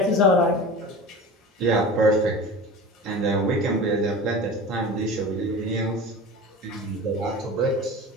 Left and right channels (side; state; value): both; normal; correlation 0.34